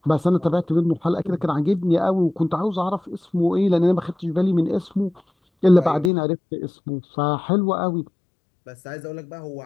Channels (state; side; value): drops out; right; at 6.1 s